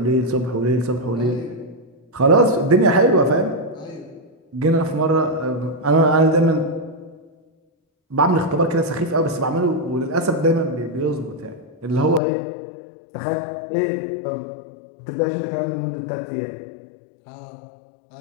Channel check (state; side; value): drops out; right; at 12.2 s